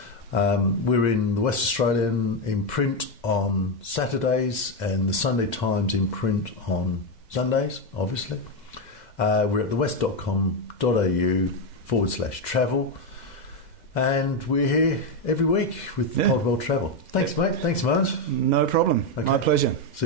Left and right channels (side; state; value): right; late; 2.0 ms